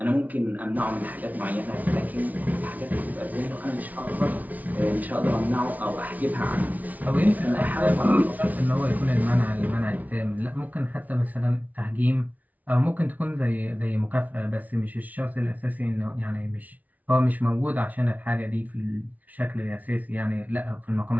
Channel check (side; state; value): left; late; 0.074 ms